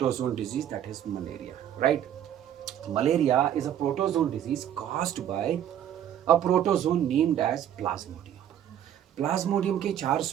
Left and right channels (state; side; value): quieter; left; 10.4 dB